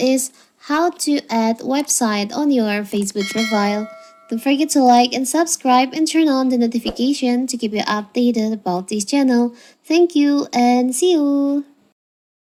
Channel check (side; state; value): both; identical; correlation 1.00